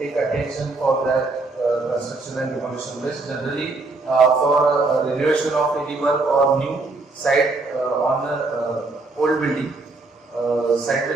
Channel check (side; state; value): left; quieter; 3.4 dB